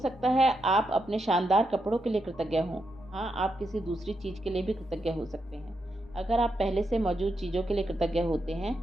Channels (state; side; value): normal; both; correlation 0.83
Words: है आप अपने शानदार कपड़ों के लिए कृतज्ञ हों। हाँ, आप किसी दूसरी चीज़ के लिए भी कृतज्ञ हो सकते हैं। अगर आप पहले से मौजूद चीज़ों के लिए कृतज्ञ होते हैं